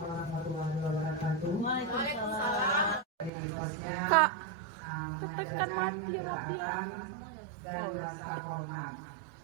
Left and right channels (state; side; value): drops out; left; at 3.3 s